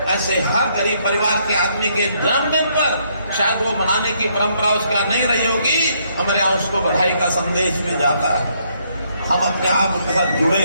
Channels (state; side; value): inverted; both; correlation -0.71